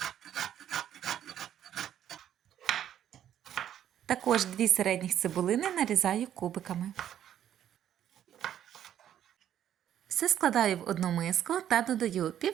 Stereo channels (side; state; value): left; quieter; 10.6 dB